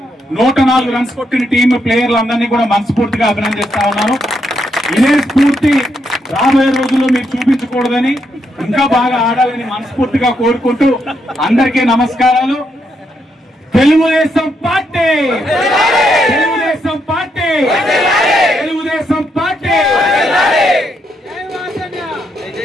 104 రన్స్ కొట్టిన టీం ప్లేయర్లందరినీ కూడా మనస్ఫూర్తిగా అభినందిస్తా ఉన్నాను. ఇదే స్ఫూర్తి రాబోయే రోజుల్లో మీరు చూపించకూడదని, ఇంకా బాగా ఆడాలని మనస్ఫూర్తిగా కోరుకుంటూ అందరికీ నమస్కారాలు. తెలుగుదేశం పార్టీ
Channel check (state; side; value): normal; both; correlation 0.78